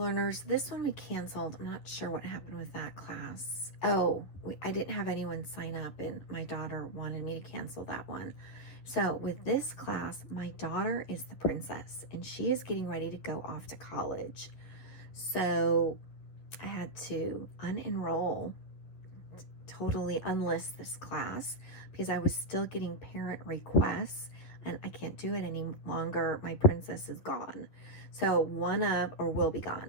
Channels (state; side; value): late; right; 11 ms